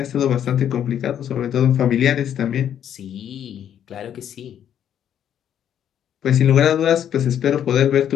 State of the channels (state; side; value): quieter; right; 9.7 dB